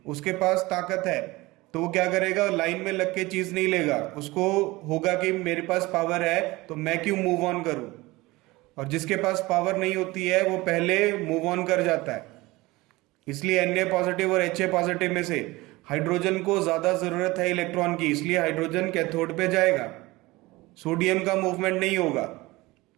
उसके पास ताकत है, तो वो क्या करेगा? लाइन में लग के चीज नहीं लेगा, उसको होगा कि मेरे पास पावर है तो मैं क्यों मूव ऑन करूं। और जिसके पास पावर नहीं होती है वो पहले मूव ऑन कर जाता है। इसलिए Na पॉजिटिव और Ha पॉजिटिव में से हाइड्रोजन को ज्यादा जरूरत है इलेक्ट्रॉन की, इसलिए हाइड्रोजन कैथोड पे जाएगा, सोडियम का मूवमेंट नहीं होगा।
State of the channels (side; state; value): left; quieter; 20.9 dB